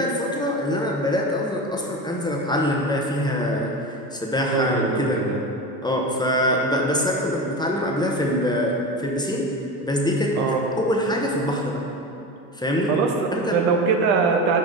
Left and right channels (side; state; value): both; normal; correlation 0.26